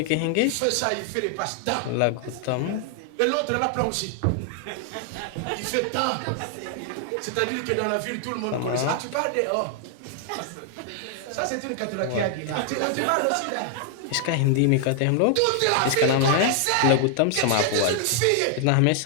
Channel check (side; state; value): both; different; correlation 0.00